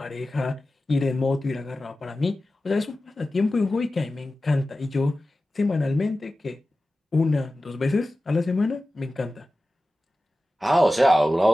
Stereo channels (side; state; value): both; normal; correlation 0.95